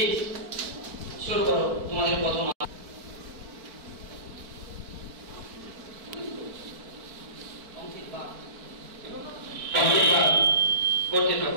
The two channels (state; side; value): late; left; 4.5 ms